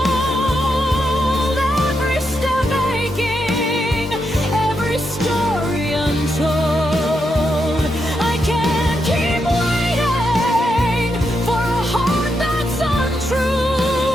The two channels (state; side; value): normal; both; correlation 0.83